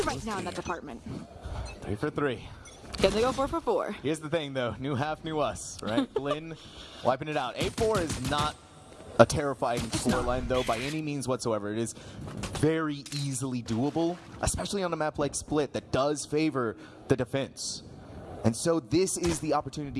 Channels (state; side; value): identical; both; correlation 1.00